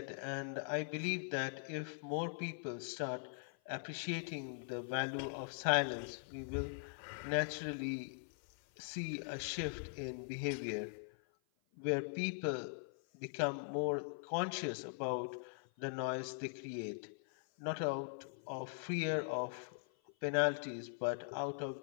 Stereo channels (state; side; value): silent; right; 50 dB below the other